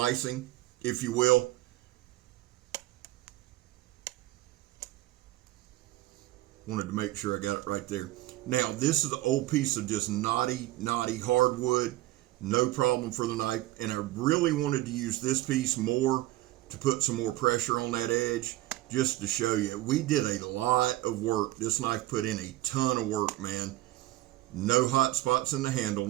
if you will. Wanted to make sure I got it right there. Now, this is an old piece of just knotty hardwood. No problem for the knife. And I really wanted to use this piece more to put some more pressure on that edge, just to show you. We did a lot of work. This knife put in a ton of work, man. No hot spots in the handle,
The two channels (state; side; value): quieter; left; 17.0 dB